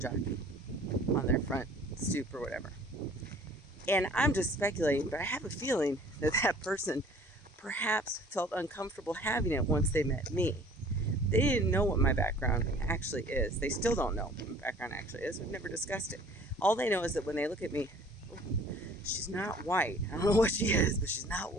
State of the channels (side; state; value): both; normal; correlation 0.51